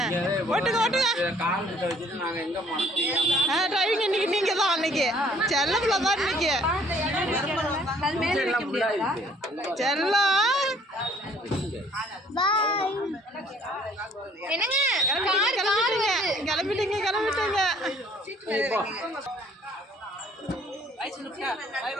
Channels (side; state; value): both; normal; correlation 0.59